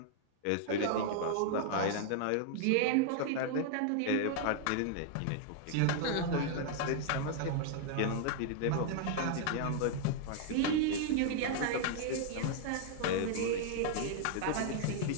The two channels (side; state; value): both; different; correlation 0.00